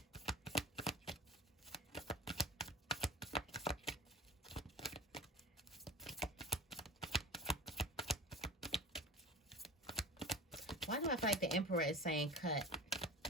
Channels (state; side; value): normal; both; correlation 0.35